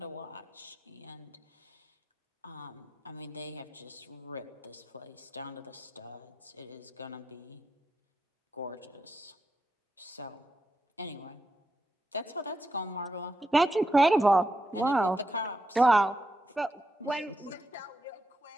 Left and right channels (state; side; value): normal; both; correlation 0.84